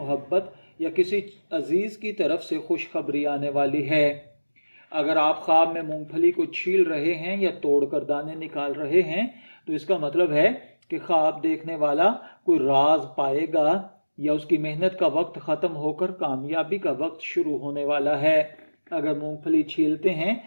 یا کسی عزیز کی طرف سے خوشخبری آنے والی ہے۔ اگر آپ خواب میں مونگ پھلی کو چھیل رہے ہیں یا توڑ کر دانے نکال رہے ہیں تو اس کا مطلب ہے کہ خواب دیکھنے والا کوئی راز پائے گا یا اس کی محنت کا وقت ختم ہو کر کامیابی کا وقت شروع ہونے والا ہے۔ اگر مونگ پھلی چھیلتے ہیں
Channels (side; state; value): both; inverted; correlation -1.00